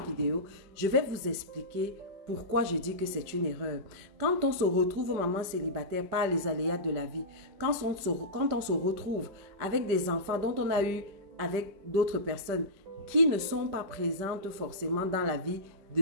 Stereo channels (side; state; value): left; late; 5.1 ms